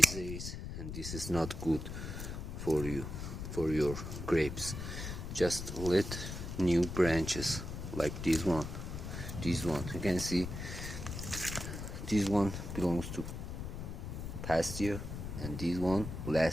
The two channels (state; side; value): noise; left; rumble, 6 dB below the sound